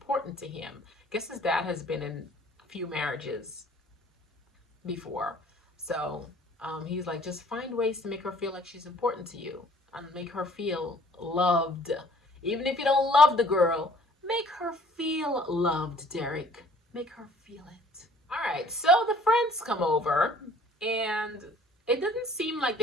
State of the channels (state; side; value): normal; both; correlation 0.55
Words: to him. Guess his dad has been in a few marriages before. So he's like, just find ways to make her feel like she's important to you and make her feel loved. Even if you don't love the girl, make her feel loved, Derek. Make her feel it. All right, so the friends come over, and it doesn't seem like